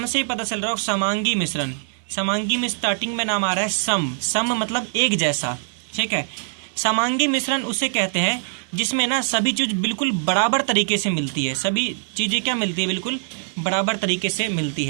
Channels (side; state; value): left; silent; digital silence